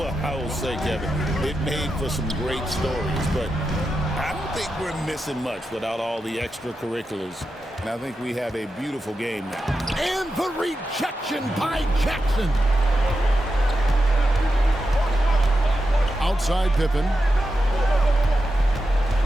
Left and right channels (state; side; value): normal; both; correlation 0.89